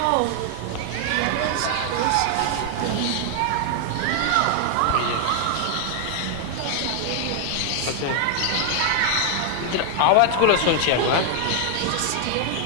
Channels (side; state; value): both; different; correlation 0.00